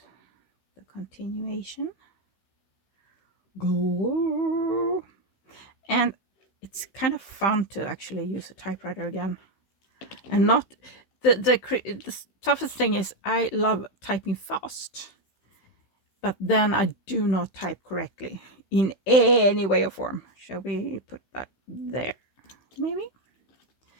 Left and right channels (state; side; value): late; right; 16 ms